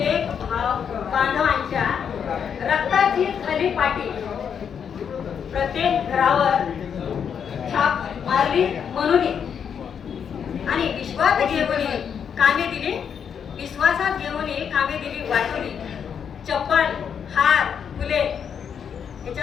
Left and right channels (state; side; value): quieter; right; 7.5 dB